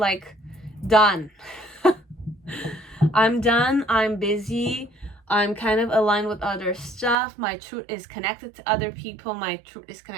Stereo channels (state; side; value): drops out; left; at 7.2 s